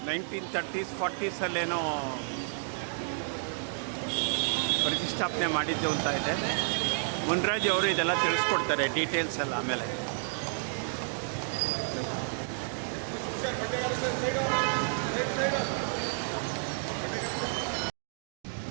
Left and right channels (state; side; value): silent; left; 57 dB below the other